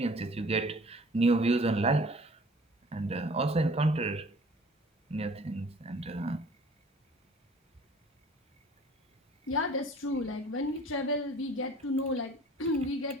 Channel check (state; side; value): normal; both; correlation 0.50